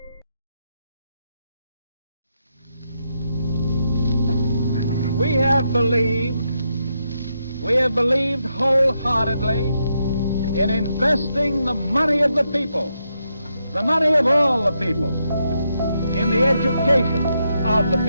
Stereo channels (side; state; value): both; inverted; correlation -0.81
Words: We have believed wholeheartedly in investing the money of the people, the money of all the people, in the education of the